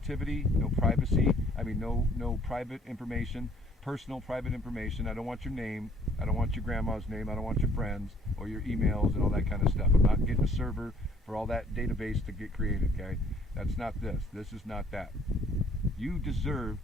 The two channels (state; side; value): normal; both; correlation 0.60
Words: no privacy, no private information, personal private information. I don't want your name, I don't want your grandma's name, I don't want your friends or your emails and all that kind of stuff. I'm not getting a server for all that database to get created. Okay, that's not this. This is not that. You deserve